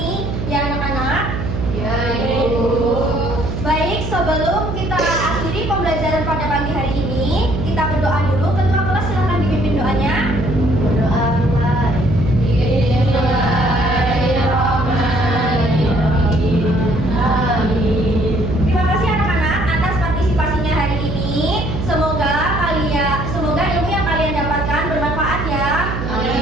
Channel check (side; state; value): right; noise; hum, 4 dB below the sound